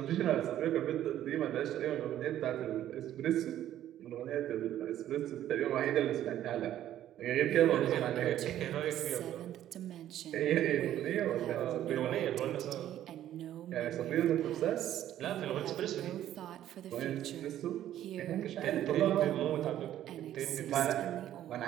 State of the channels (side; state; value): left; quieter; 12.1 dB